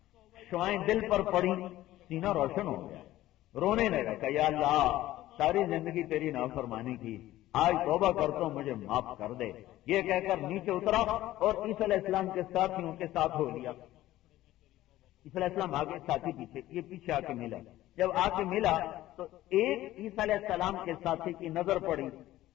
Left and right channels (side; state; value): right; quieter; 15.2 dB